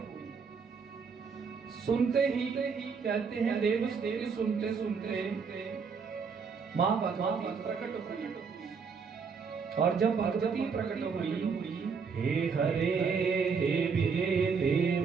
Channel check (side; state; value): left; quieter; 5.6 dB